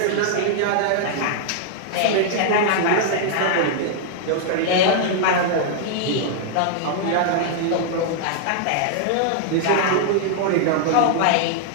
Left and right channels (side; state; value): both; different; correlation -0.01